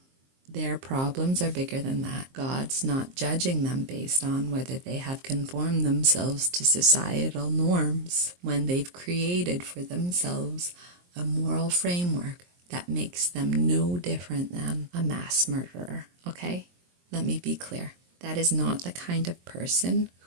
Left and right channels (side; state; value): left; late; 23 ms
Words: Their problems are bigger than that. God's not judging them based on whether they have conformed themselves to societal norms when they've created for themselves a moral framework that makes them no different than a mass murderer, okay? Let me be clear. That is not the kind of person